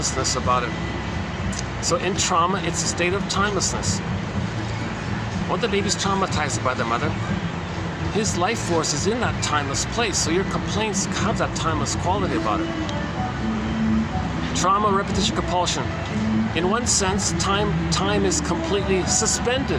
about it. So in trauma, it's a state of timelessness. When the baby's traumatized by the mother, his life force is in that timeless place. So your complaints have that timeless quality about it. Trauma, repetition, compulsion. In one sense, time is completely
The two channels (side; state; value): both; identical; correlation 1.00